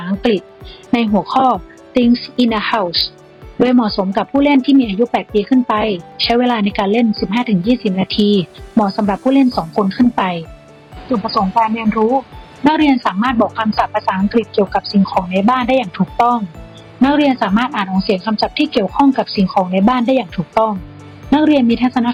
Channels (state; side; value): identical; both; correlation 1.00